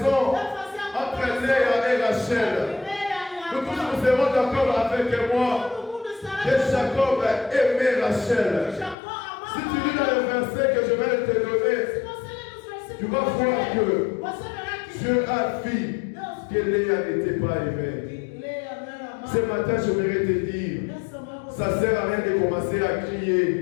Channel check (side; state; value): right; drops out; at 9.0 s